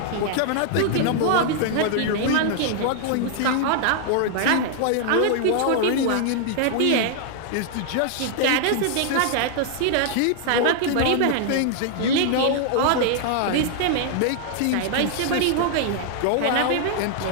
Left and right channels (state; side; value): different; both; correlation 0.00